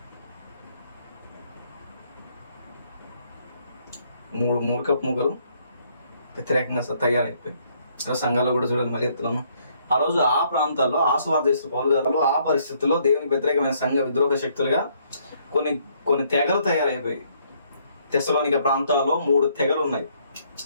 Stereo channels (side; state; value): both; inverted; correlation -0.68